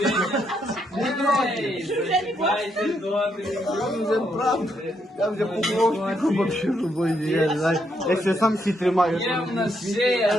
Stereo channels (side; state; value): both; normal; correlation 0.77